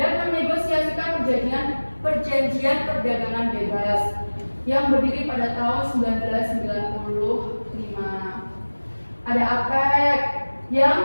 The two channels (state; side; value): inverted; both; correlation -1.00